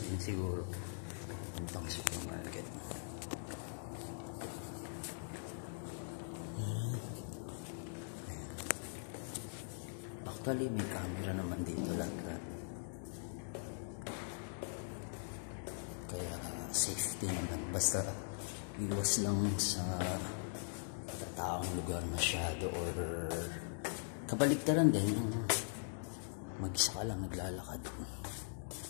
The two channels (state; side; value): silent; right; digital silence